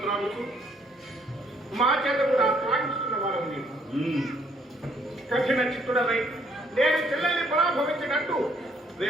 మా చేత కూడా త్రాగిస్తున్న వారు నీవు కఠిన చిత్తుడవై నేను చెల్లెల్ని పరాభవించినట్టు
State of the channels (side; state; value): both; normal; correlation 0.66